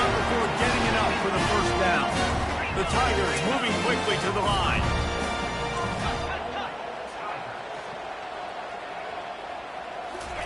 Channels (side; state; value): both; identical; correlation 1.00